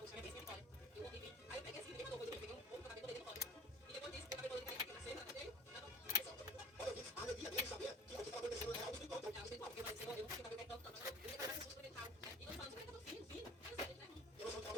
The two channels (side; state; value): both; normal; correlation 0.46